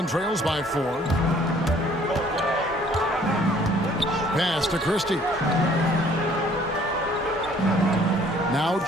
trails by 4. Pass to Christie. Now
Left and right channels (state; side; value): normal; both; correlation 0.58